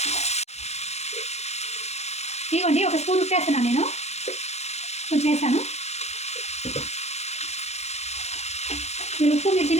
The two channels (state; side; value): late; right; 0.32 ms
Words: ఇవ్వండి, 1 స్పూన్ ఉప్పు వేస్తున్నాను నేను. కొంచెం వేస్తాను. మీరు ఉప్పు మీరు